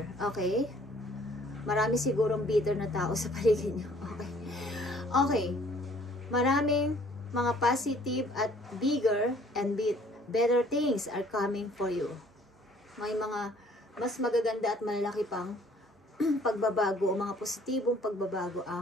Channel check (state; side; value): normal; both; correlation 0.58